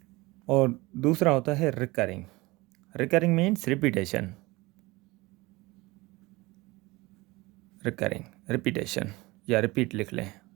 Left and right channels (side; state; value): left; quieter; 21.9 dB